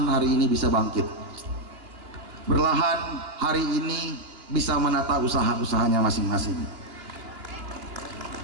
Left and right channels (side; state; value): left; late; 2.8 ms